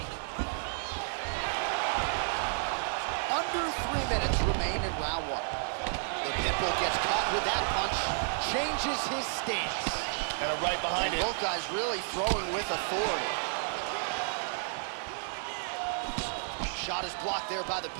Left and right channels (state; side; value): silent; left; digital silence